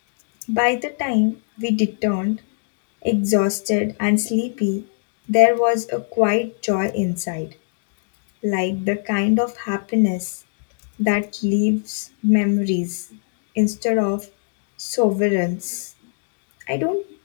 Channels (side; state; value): right; silent; digital silence